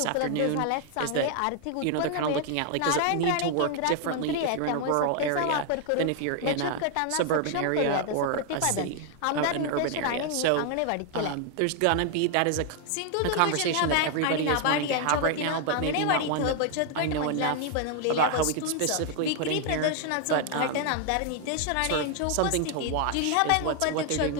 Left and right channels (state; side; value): different; both; correlation 0.00